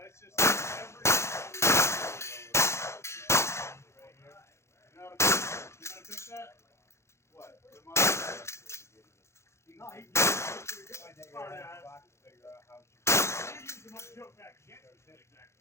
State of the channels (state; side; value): late; right; 0.13 ms